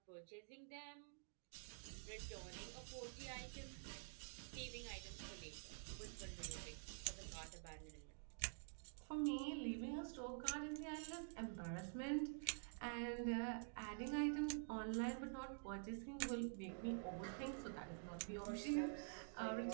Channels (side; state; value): left; silent; digital silence